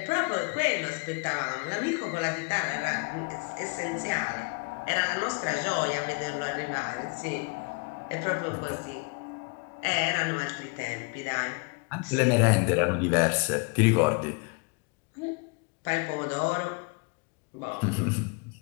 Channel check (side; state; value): right; quieter; 31.4 dB